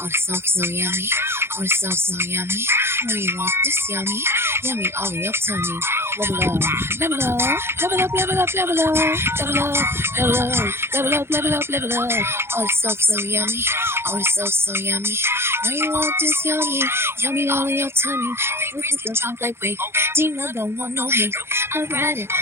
this song so yummy. Oh, this song so yummy. Know you want this yummy, yummy all in your tummy. Level up, level up, level up, level up, level up, level up, level up, level up, level up, level up. Oh, this song so yummy. Oh, this song so yummy. Know you want this yummy, yummy all in your tummy. Favorites can drop like wait. Dina don't want no hate. I ride it,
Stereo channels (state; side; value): late; left; 0.12 ms